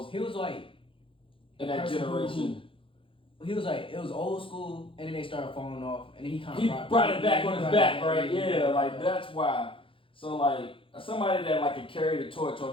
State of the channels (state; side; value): late; right; 0.25 ms